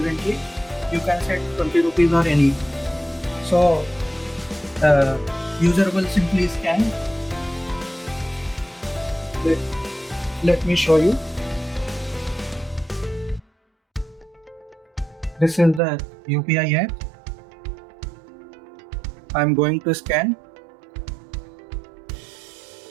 you can set 20 rupees or any. So user will simply scan. Let me show you. This is the UPI app. I'm going to scan.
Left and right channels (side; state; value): left; drops out; at 15.8 s